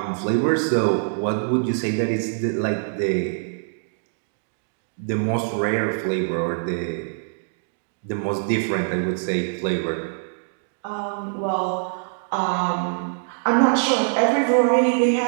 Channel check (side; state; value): left; silent; digital silence